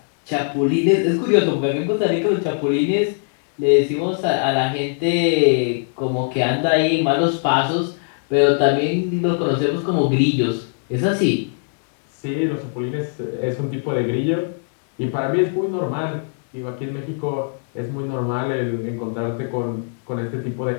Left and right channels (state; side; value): silent; right; digital silence